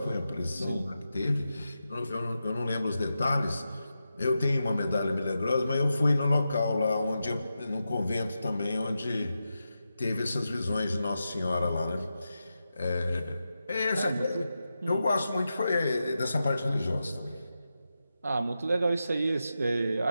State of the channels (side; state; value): both; inverted; correlation -0.90